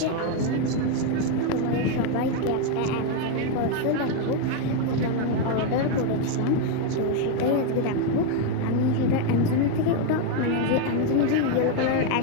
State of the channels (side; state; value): both; different; correlation 0.01